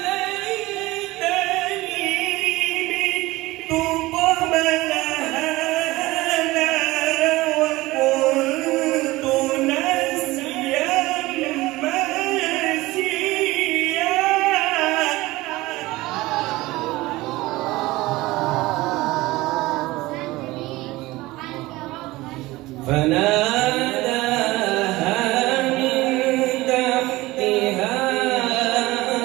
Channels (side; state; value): left; quieter; 19.6 dB